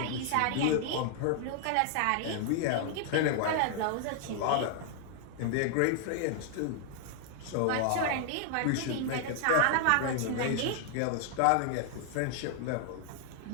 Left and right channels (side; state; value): both; different; correlation 0.00